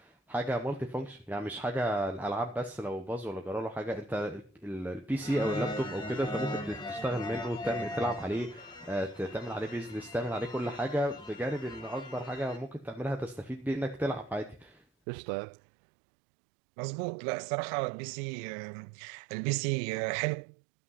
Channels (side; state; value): left; drops out; at 14.9 s